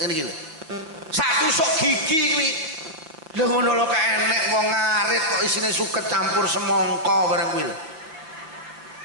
ngene iki lho sak tusuk gigi kuwi lho ngono lho kok enek wong ngarit kok isine suket campur semangka bareng kuwi lho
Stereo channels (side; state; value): left; late; 6.1 ms